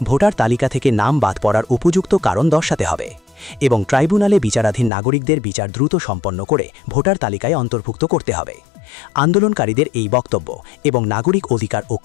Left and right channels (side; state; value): right; drops out; at 4.9 s